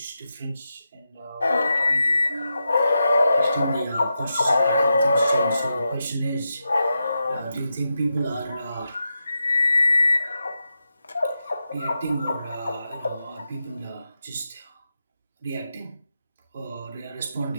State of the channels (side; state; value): both; inverted; correlation -0.88